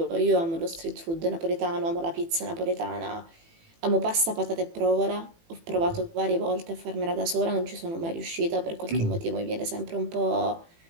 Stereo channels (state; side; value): late; left; 18 ms